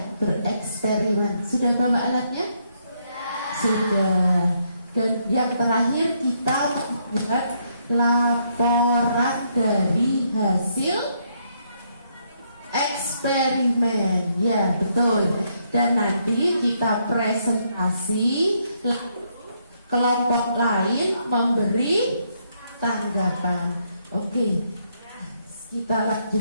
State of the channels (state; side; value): inverted; both; correlation -0.74